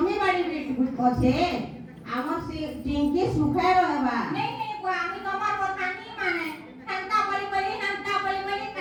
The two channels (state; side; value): identical; both; correlation 1.00